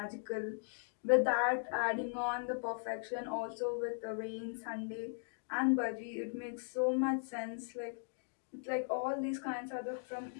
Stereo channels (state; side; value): silent; right; digital silence